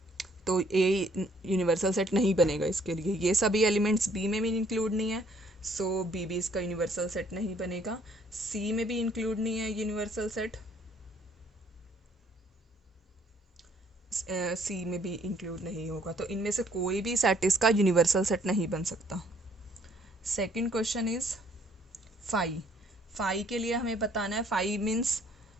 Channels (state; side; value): normal; both; correlation 0.63